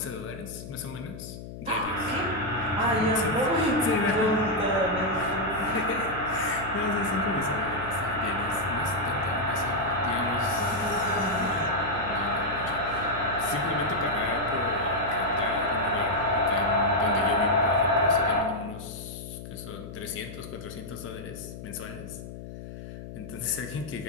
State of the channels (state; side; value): noise; left; hum, 11 dB below the sound